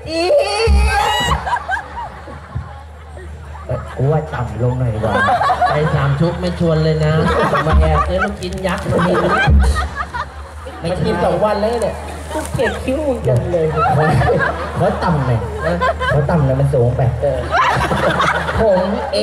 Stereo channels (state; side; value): identical; both; correlation 1.00